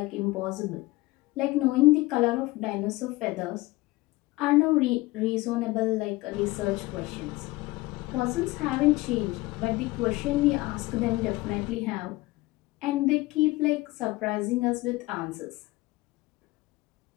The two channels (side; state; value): right; quieter; 20.5 dB